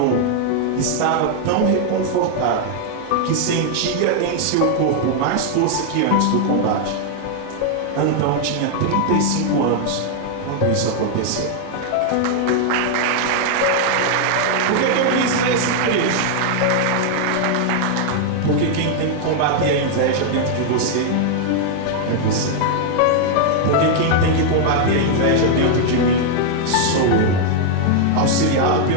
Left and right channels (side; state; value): both; different; correlation 0.00